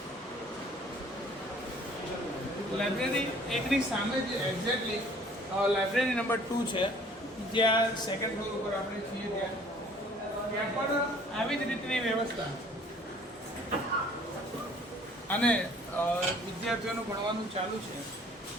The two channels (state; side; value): normal; both; correlation 0.55